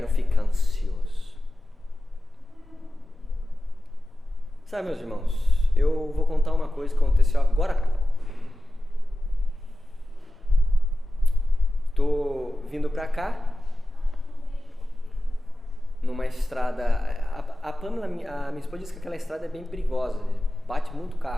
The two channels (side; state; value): both; normal; correlation 0.94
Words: ficar ansioso. Sabe, meus irmãos, eu vou contar uma coisa que aconteceu agora há pouco. Estou vindo para cá, numa estrada, a Pamela, a minha esposa disse que aquela estrada é bem perigosa, bate muito